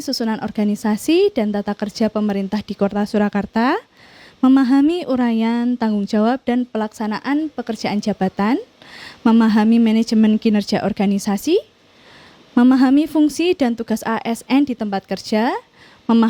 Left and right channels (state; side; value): identical; both; correlation 1.00